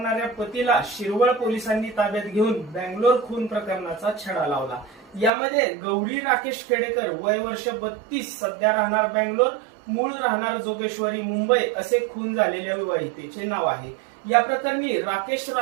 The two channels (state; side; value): drops out; left; at 5.3 s